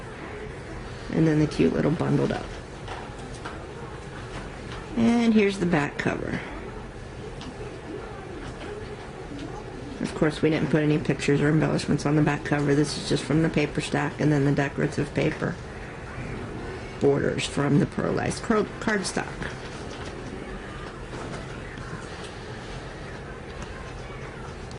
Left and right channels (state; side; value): identical; both; correlation 1.00